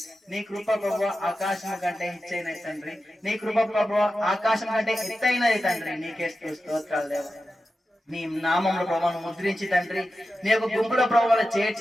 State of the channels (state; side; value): normal; both; correlation 0.92